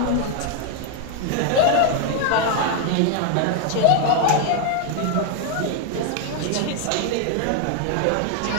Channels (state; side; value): different; both; correlation 0.01